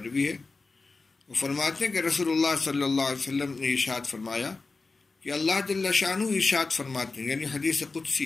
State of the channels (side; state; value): right; quieter; 3.9 dB